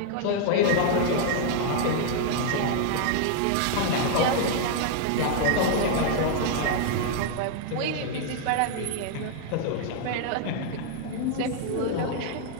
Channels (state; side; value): different; both; correlation 0.00